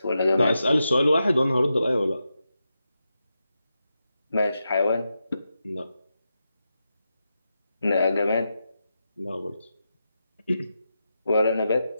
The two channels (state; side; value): inverted; both; correlation -0.88